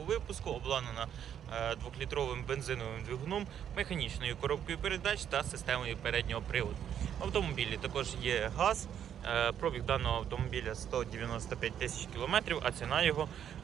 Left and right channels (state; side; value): quieter; left; 9.3 dB